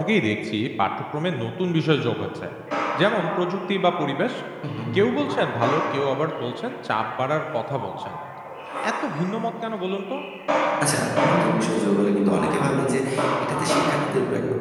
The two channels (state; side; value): identical; both; correlation 1.00